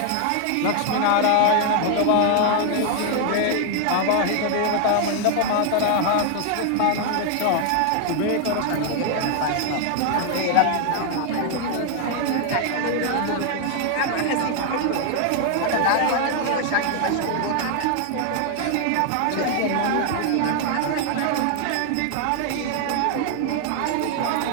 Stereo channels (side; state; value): both; different; correlation 0.00